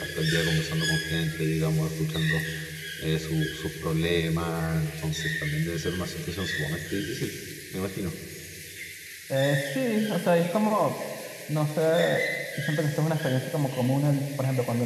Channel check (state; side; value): identical; both; correlation 1.00